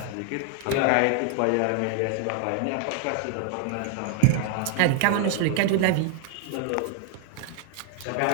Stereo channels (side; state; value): both; different; correlation 0.00